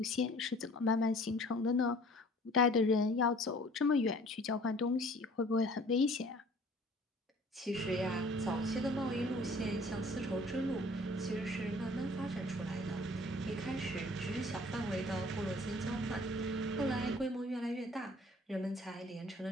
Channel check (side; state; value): both; normal; correlation 0.51